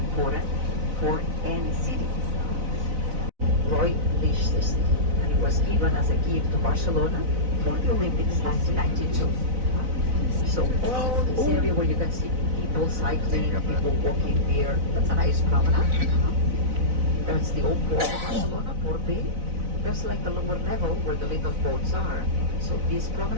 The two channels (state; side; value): late; left; 4.0 ms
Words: for any city. Roy Lichtenstein, and it was given as a gift to Barcelona for the Olympics 1992. So all this area where you can see people cycling, people walking there, that's a nice promenade. That's the old port of Barcelona, Port Bay. There's like the lower level where the little boats are. So this